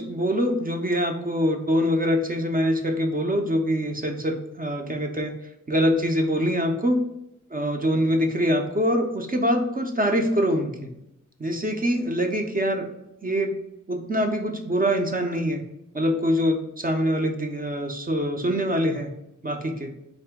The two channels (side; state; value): both; normal; correlation 0.56